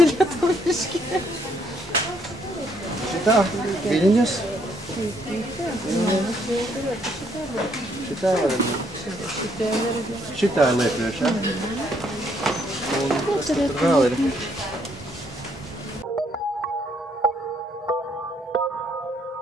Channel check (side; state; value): both; normal; correlation 0.70